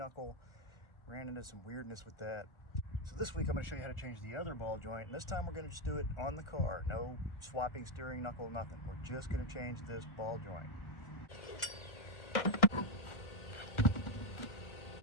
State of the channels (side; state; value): right; late; 1.4 ms